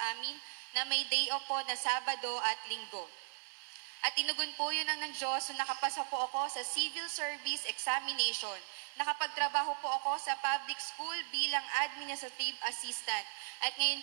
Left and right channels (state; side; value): silent; left; 53 dB below the other